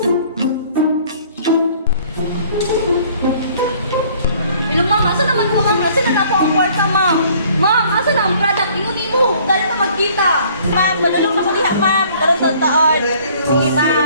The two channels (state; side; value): inverted; both; correlation -0.57